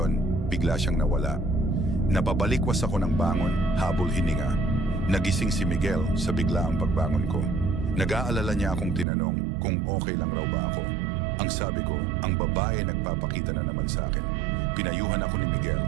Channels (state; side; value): drops out; left; at 9.1 s